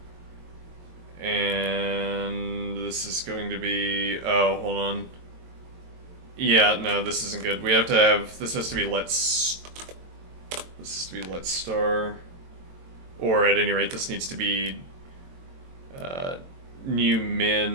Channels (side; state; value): left; late; 22 ms